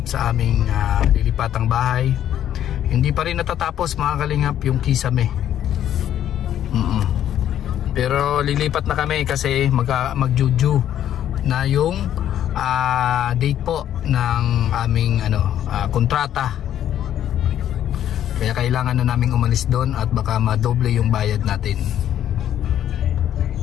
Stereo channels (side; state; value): right; quieter; 10.9 dB